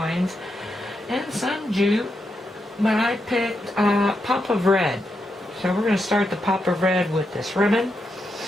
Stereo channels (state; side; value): normal; both; correlation 0.84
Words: and some jute. But I picked a pop of red. So we're going to start the pop of red with this ribbon.